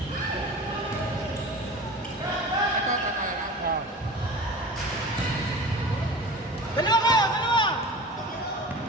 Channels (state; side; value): normal; both; correlation 0.36